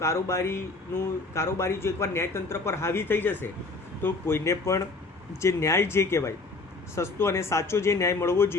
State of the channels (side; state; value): right; quieter; 3.6 dB